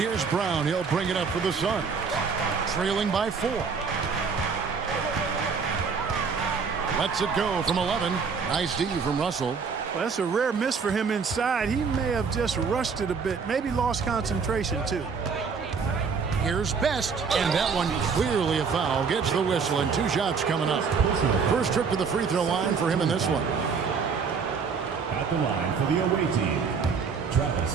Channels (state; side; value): quieter; left; 5.6 dB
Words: Brown. He'll bring it up for the Suns. Trailing by 4. Lets it go from 11. Nice D from Russell. Well, that's a rare miss for him inside. He may have just rushed it a bit, maybe lost concentration too. Here's Best, and that one clearly a foul. Gets the whistle, and 2 shots coming up. First trip to the free throw line for him in this one. At the line for the away team, Travis